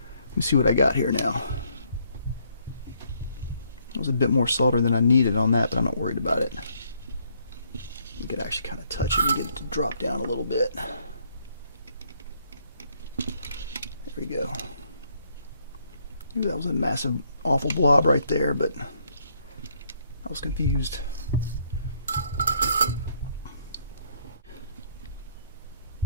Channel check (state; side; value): inverted; both; correlation -0.69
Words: me see what I got here now. That was a bit more solder than I needed on that, but I'm not worried about it. We could actually kind of touch it and get it to drop down a little bit. There we go. Maybe that was a massive, awful blob right there, but I was confused.